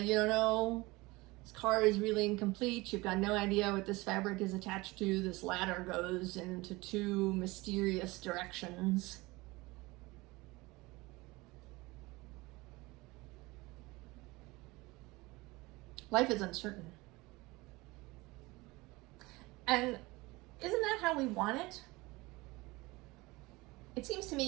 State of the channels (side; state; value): left; quieter; 22.3 dB